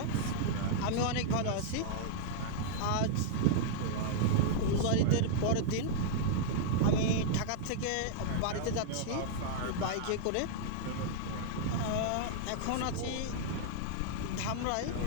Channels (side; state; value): both; different; correlation -0.01